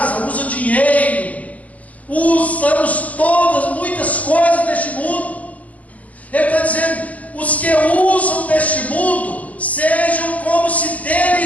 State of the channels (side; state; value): right; late; 0.070 ms